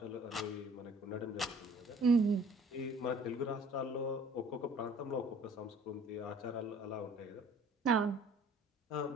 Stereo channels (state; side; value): normal; both; correlation 0.53